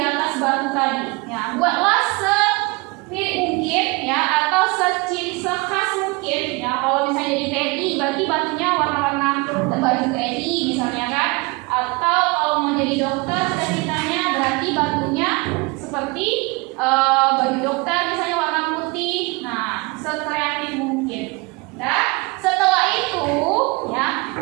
batu tadi. Ya, buatlah semirip mungkin ya atau sekhas mungkin ya. Kalau misalnya jadi TNI berarti batunya warna-warna baju TNI misalnya kan. Atau kalau mau jadi dokter cita-citanya berarti batunya seperti baju dokter misalnya warna putih. Nah, sekreatif mungkin. Nah, setelah itu ya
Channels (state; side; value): quieter; left; 26.8 dB